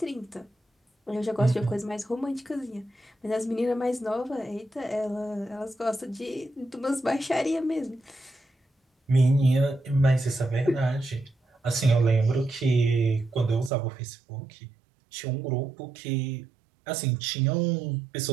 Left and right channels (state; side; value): drops out; left; at 13.7 s